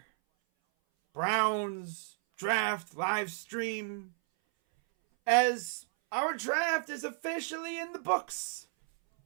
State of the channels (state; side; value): silent; left; 56 dB below the other